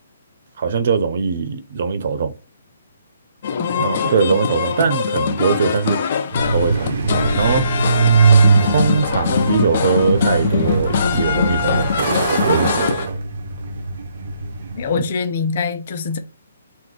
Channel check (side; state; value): both; inverted; correlation -0.69